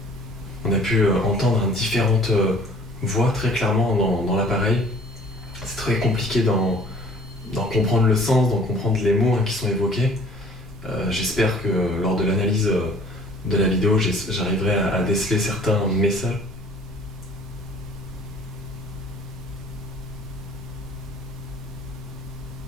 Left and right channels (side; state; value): both; normal; correlation 0.52